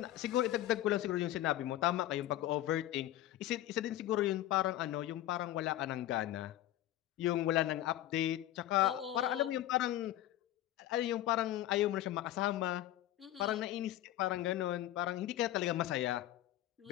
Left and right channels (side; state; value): right; quieter; 13.7 dB